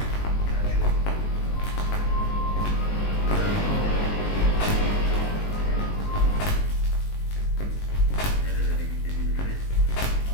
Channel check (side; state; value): right; late; 19 ms